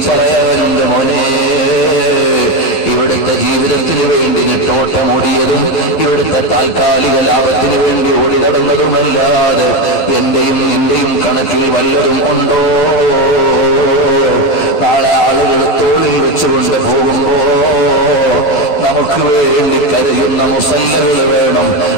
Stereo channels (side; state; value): right; late; 12 ms